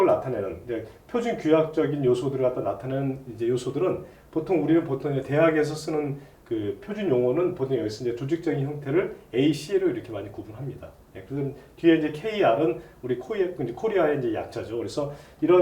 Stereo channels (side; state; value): both; identical; correlation 1.00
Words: 나타내는 표준 규약적인 요소들을 갖다 나타내는 이제 요소들은 우리는 보통 대학에서 쓰는 그 표준 용어는 보통 여기서 이제 조직적인 형태를 AC로 이렇게 많이 구분합니다. 그래서 뒤에 이제 KR은 우리 코리아의 이제 약자죠. 그래서